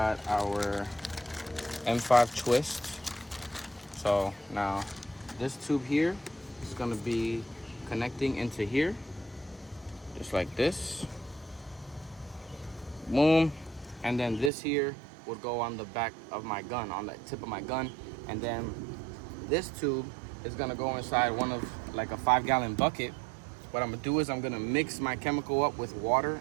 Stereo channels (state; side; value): drops out; left; at 14.5 s